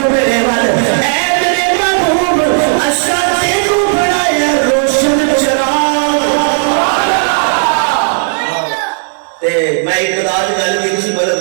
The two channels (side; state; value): left; silent; digital silence